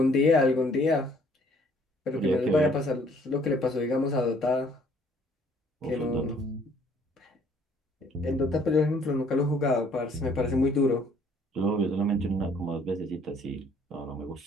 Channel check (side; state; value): both; normal; correlation 0.61